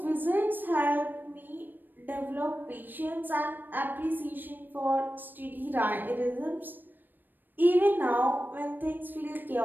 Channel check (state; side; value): late; left; 0.092 ms